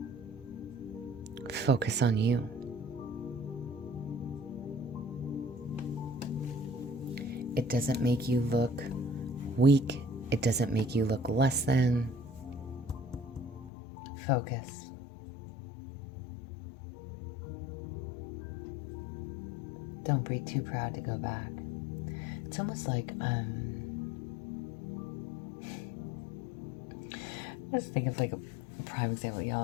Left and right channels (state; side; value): drops out; right; at 13.7 s